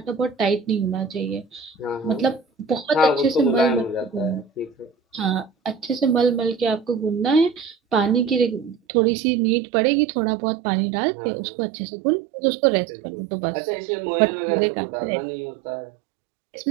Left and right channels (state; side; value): drops out; left; at 8.8 s